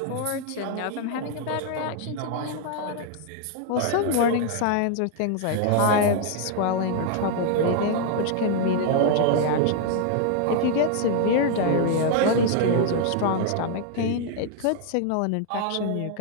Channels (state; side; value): different; both; correlation 0.00